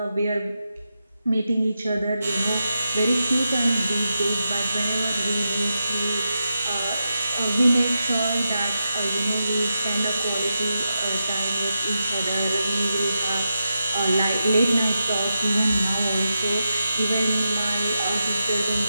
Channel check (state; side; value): inverted; both; correlation -0.88